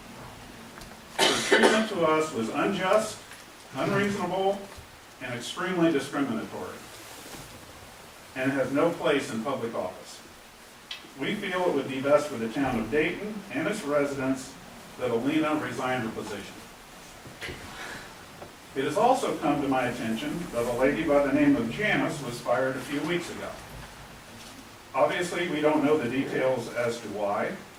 Her treatment to us was unjust, unreasonable, and extremely discriminatory, and has no place in public office. We feel it would be best for the town of Dayton and its residents that Alina resign her position. It has also come to my attention that a lady by the name of Janice was fired a few weeks ago. Obviously, we don't know the details as to why.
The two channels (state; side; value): identical; both; correlation 1.00